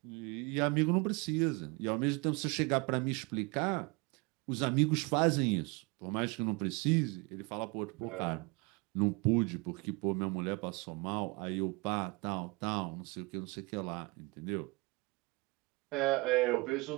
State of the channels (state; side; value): quieter; left; 27.6 dB